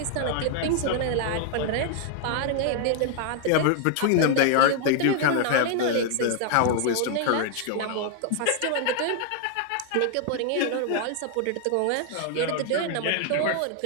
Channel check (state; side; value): different; both; correlation 0.00